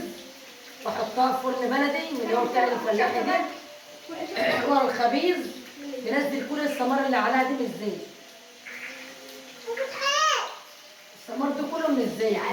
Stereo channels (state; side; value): identical; both; correlation 1.00